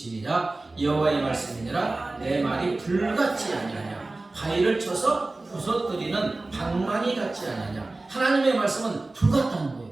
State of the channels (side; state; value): left; quieter; 3.1 dB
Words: 여호와의 말씀이니라 내 말이 불같지 아니하냐 바위를 쳐서 부서뜨리는 방망이 같지 아니하냐. 하나님의 말씀은 불 같다는 거예요.